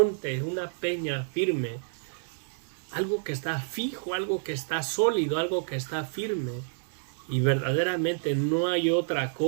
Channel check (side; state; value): left; silent; digital silence